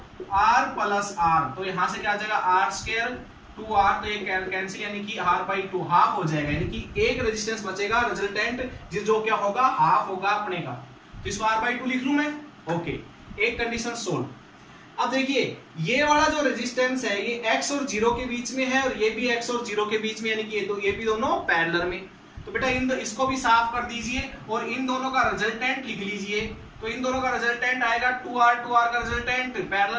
R plus R, तो यहां से क्या आ जाएगा R स्क्वायर 2R, तो ये कैंसिल, यानी कि R/2 हाफ हो जाएगा, यानी कि एक रेजिस्टेंस बचेगा, रिजल्टेंट जो क्या होगा, हाफ होगा अपने का, तो इसको R/2 लिख लूं मैं, ओके, एक कंडीशन सोल्व। अब देखिए ये वाला जो रेजिस्टेंस है ये X और 0 के बीच में है, और ये भी X और 0 के बीच में, यानी कि ये भी दोनों पैरेलल में। तो बेटा इसको भी साफ कर दीजिए, और इन दोनों का रिजल्टेंट लिख लीजिए। तो इन दोनों का रिजल्टेंट आएगा 2R का रिजल्टेंट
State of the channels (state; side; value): identical; both; correlation 1.00